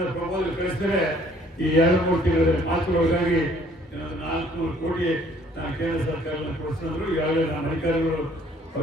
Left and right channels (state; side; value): normal; both; correlation 0.60